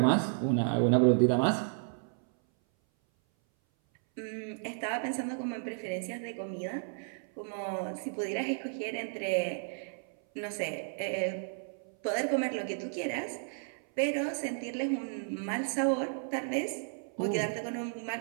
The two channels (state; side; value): silent; left; 56 dB below the other